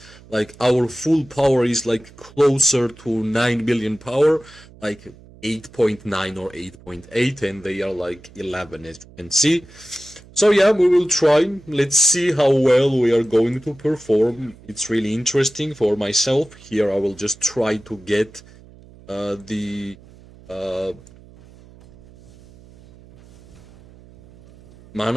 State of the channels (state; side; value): noise; right; hum, 23 dB below the sound